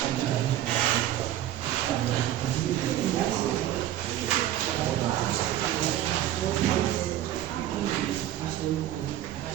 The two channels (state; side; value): quieter; left; 12.5 dB